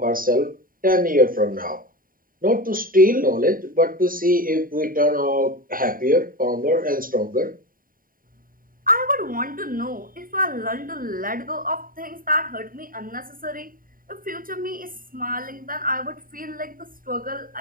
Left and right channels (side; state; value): left; late; 0.41 ms